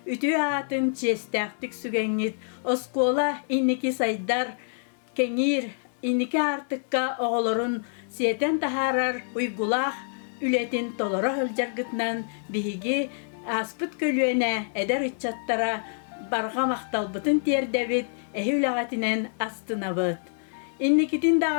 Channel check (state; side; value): silent; right; digital silence